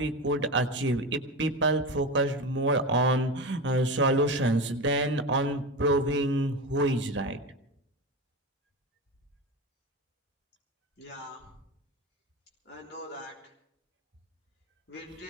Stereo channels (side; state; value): both; normal; correlation 0.22